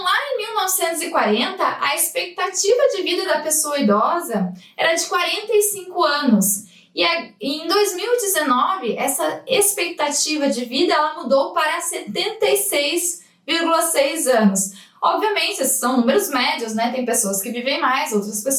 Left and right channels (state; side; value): identical; both; correlation 1.00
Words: lá em 1940, a expectativa de vida da pessoa idosa era de 45 anos. E em 2019, essa expectativa de vida ela mudou para 76,6 anos. Obviamente, esses são números médios, né? Tem pessoas que vivem mais, outras